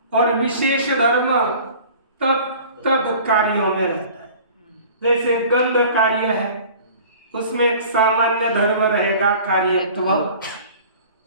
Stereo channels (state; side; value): inverted; both; correlation -0.45